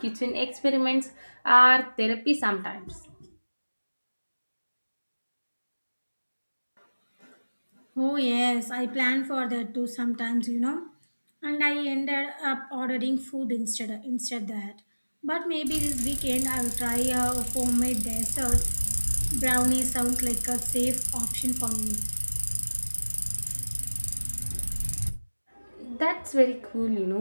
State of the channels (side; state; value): both; inverted; correlation -1.00